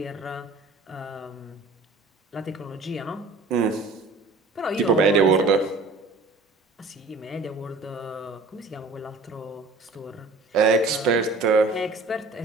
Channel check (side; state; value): left; quieter; 3.5 dB